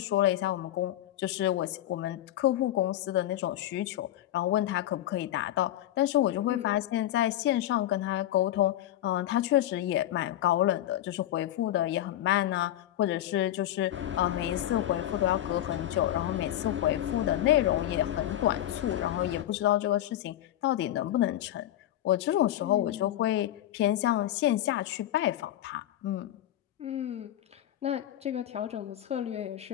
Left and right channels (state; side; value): quieter; right; 12.8 dB